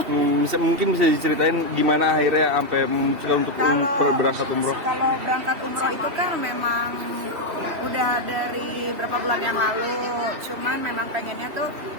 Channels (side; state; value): left; late; 2.9 ms